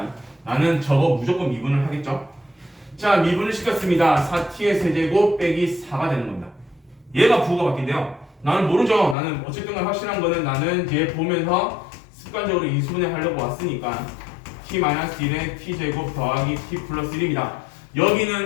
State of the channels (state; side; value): drops out; right; at 9.2 s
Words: 나는 저거 무조건 미분을 하겠죠. 자, 미분을 시켰습니다. 4t의 세제곱 빼기 4가 되는 겁니다. 얘가 부호가 바뀐대요. 나는 모르죠. 나는 어쨌든 확실한 거는 나는 얘 보면서 습관적으로 인수분해 하려고 왔으니까 t-1에 t제곱 더하기 t 플러스 1입니다.